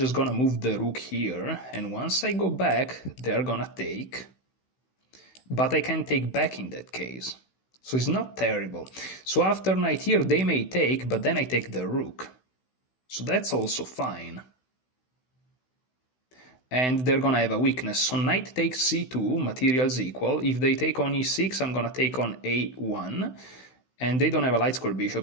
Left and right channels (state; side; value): late; right; 16 ms